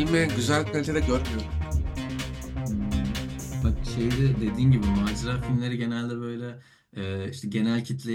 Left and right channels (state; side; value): identical; both; correlation 1.00